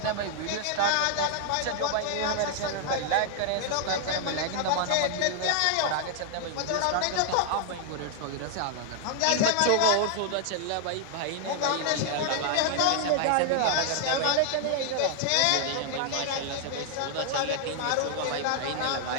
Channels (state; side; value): different; both; correlation 0.00